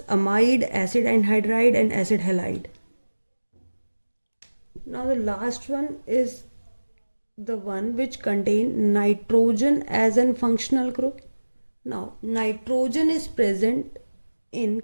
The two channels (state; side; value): inverted; both; correlation -1.00